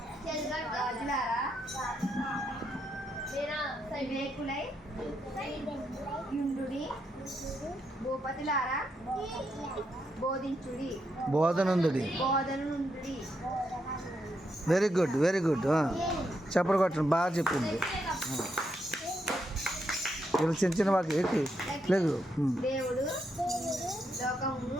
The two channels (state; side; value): normal; both; correlation 0.80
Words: గాజులారా వివేకులై యుండుడి భూపతులారా బోధించుడి బోధనుందుడి. బోధనుండుడి. Very good, very good. చెప్పడు కొట్టండి, బాగా చెప్పింది. ఇలా చిన్న చిన్న వాకి ఎక్కి లేదు. దేవుడు లోకమును